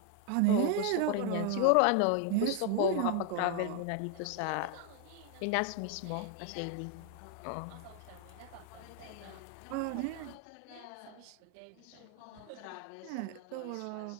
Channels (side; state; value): both; different; correlation 0.00